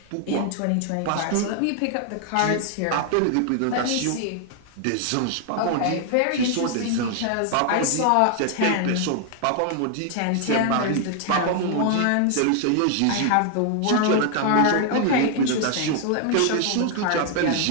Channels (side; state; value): both; different; correlation 0.00